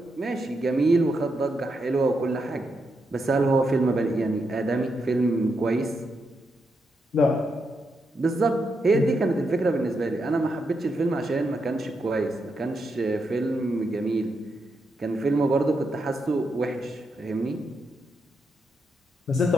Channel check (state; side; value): normal; both; correlation 0.83